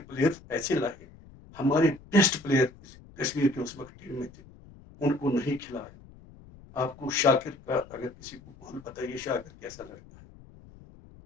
پلیئر ایسے لائے, ہمارے بیسٹ پلیئر کشمیر کے اس وقت ٹیم میں تھے, ان کو نہیں کھلایا. آپ کو شاکر کا اگر کسی کو بول بتائیے شاکر کیسا لڑکا ہے,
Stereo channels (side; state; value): left; noise; rumble, 22 dB below the sound